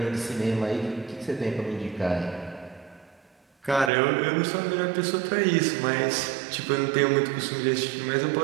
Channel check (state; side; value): drops out; left; at 3.9 s